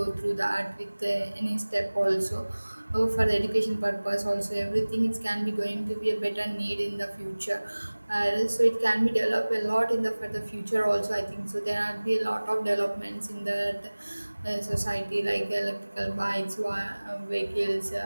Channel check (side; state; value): both; inverted; correlation -1.00